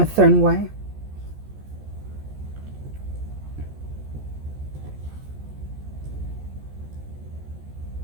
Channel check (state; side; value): late; left; 14 ms